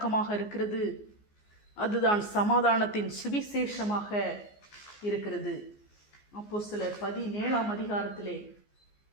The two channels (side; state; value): right; late; 14 ms